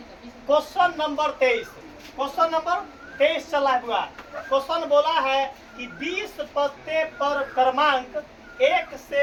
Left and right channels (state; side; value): identical; both; correlation 1.00